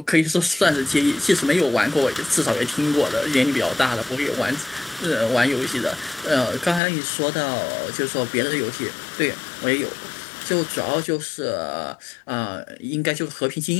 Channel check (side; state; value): right; drops out; at 6.8 s